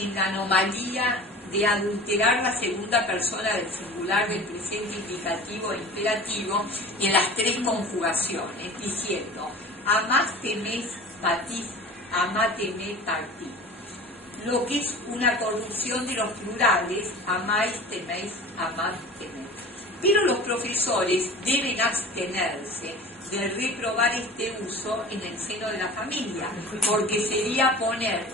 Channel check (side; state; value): both; normal; correlation 0.38